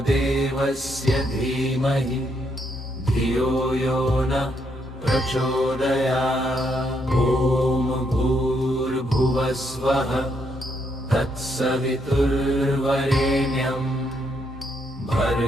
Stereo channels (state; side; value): normal; both; correlation 0.75